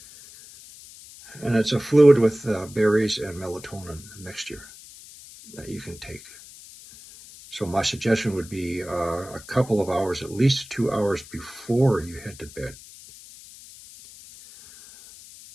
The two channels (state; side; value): noise; left; hiss, 19 dB below the sound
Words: And it's a fluid with berries and melatonin mixture that you can take. So my suggestion would be a couple of hours, at least 2 hours before you head to bed.